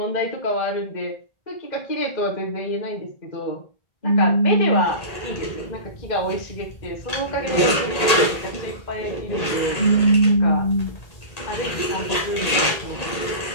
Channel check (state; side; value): late; right; 1.8 ms